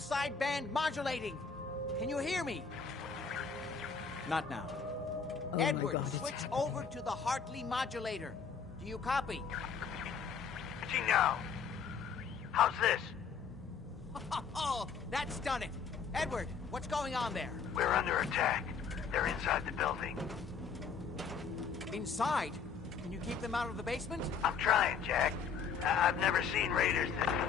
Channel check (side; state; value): right; quieter; 6.0 dB